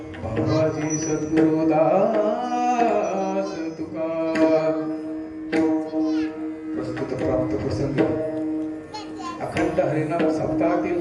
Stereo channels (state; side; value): identical; both; correlation 1.00